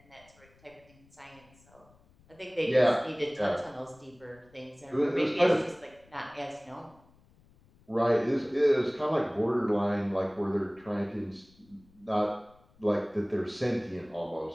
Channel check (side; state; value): left; noise; rumble, 29 dB below the sound